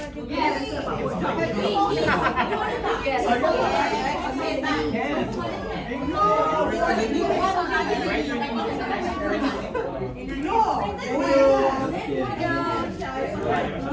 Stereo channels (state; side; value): identical; both; correlation 1.00